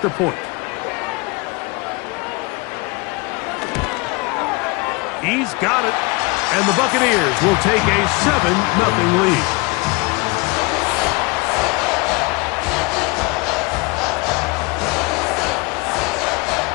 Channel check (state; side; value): quieter; right; 26.5 dB